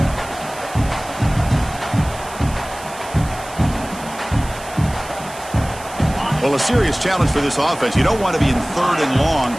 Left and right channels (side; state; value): right; noise; hiss, 16 dB below the sound